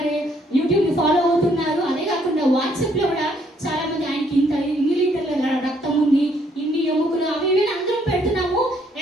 ని ఫాలో అవుతున్నారు. అదే కాకుండా వాట్సాప్ లో కూడా చాలా మంది ఆయనకి ఇన్ని లీటర్ల రక్తం ఉంది, ఇన్ని ఎముకలు, అవి ఇవి అందరం పెడుతున్నాము.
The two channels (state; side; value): normal; both; correlation 0.68